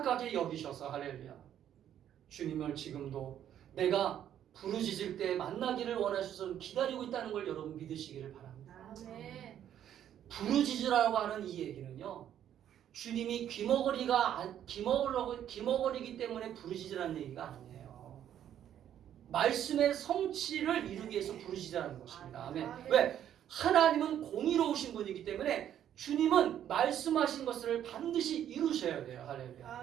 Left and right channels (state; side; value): quieter; left; 10.4 dB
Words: 여기셔서, 할렐루야, 주님을 지금도 내가 부르짖을 때 만나기를 원하셔서 기다리고 있다는 걸 여러분 믿으시기를 바랍니다. 아멘. 부르짖으라고 하는 이 얘기는요, 주님이 귀머거리기 때문에 부르짖으라는 얘기가 아니에요. 말씀의 성취를 이루기 위해서 부르짖으라는 것입니다. 아멘. 아멘. 왜? 하나님은 공의로우신 분이기 때문에 주님은 말씀하신 것을 반드시 이루셔야 돼요. 할렐루야.